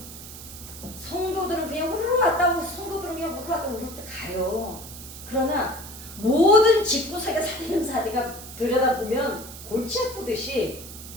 성도들은 그냥 우르르 왔다고, 성도들은 그냥 우르르 왔다고 우르르 가요. 그러나 모든 직구석의 살림살이가 들여다보면 골치 아프듯이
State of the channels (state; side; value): noise; right; hiss, 13 dB below the sound